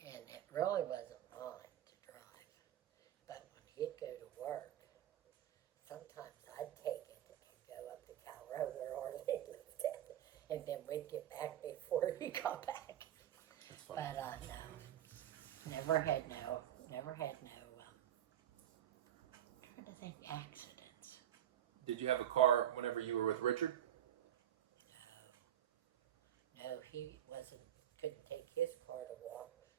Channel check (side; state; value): left; quieter; 11.2 dB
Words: And it really wasn't mine to drive. But when he'd go to work, sometimes I'd take it and go up to Calrover or he lived at it. And then we'd get back before he got back. That's funny. But no, never had no, I'm trying to think accidents. Did you have a car whenever you were with Richard? No, he couldn't take his car